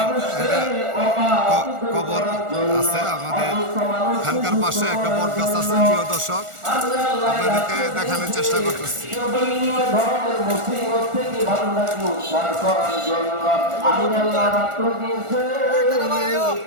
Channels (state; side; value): late; left; 1.4 ms